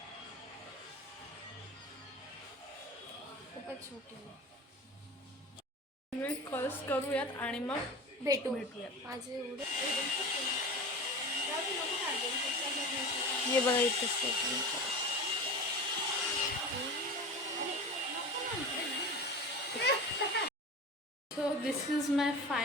खूपच छोटी आहे. कॉल्स करूयात आणि मग भेटूयात. माझे एवढे हे बघा इथं so this is my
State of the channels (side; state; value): both; normal; correlation 0.31